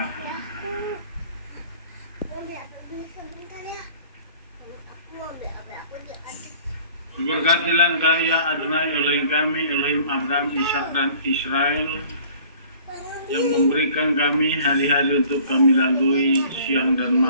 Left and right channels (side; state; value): both; inverted; correlation -0.51